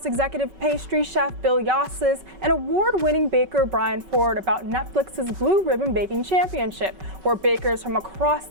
executive pastry chef Bill Yosses, and award-winning baker Brian Ford about Netflix's Blue Ribbon Baking Championship, where bakers from across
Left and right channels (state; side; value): late; left; 5.3 ms